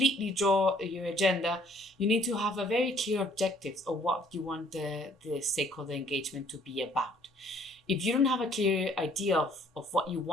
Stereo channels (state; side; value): normal; both; correlation 0.60